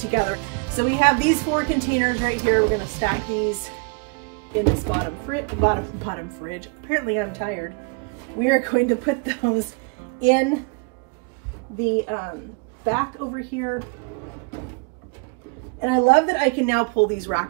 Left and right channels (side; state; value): left; quieter; 32.0 dB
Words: So we have these 4 containers right here. We're going to stack these in this bottom fridge. Apparently I'm tired. We are going to put those in the back over here. And I love that I can now pull these